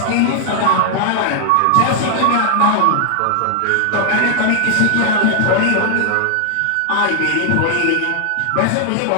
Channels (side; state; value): both; different; correlation 0.00